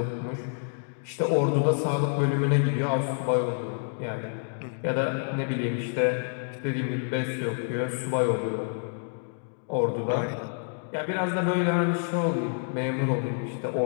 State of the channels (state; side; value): silent; right; digital silence